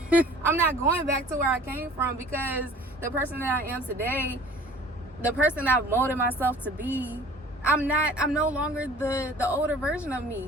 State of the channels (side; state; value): both; normal; correlation 0.48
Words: I'm not going back to where I came from, because the person that I am today, the person I've molded myself to be, I'm no longer the older version of